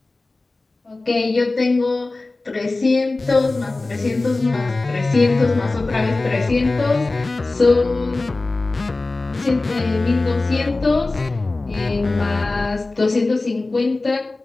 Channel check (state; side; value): quieter; right; 3.2 dB